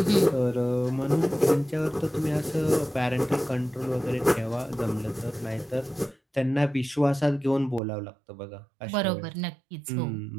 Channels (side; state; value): left; drops out; at 7.8 s